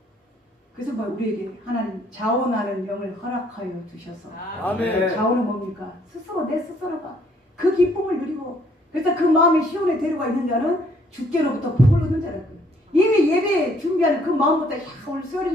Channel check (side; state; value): both; normal; correlation 0.64